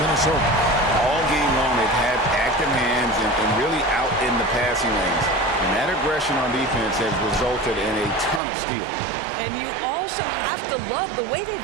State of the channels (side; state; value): left; drops out; at 8.4 s